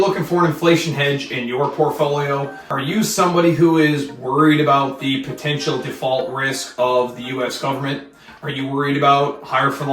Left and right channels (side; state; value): both; identical; correlation 1.00